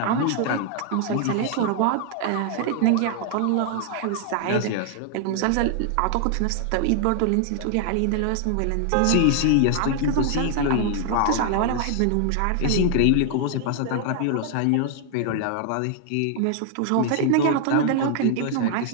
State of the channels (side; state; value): both; different; correlation 0.00